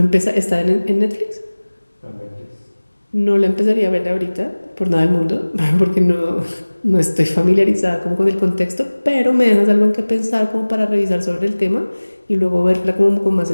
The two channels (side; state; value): both; inverted; correlation -1.00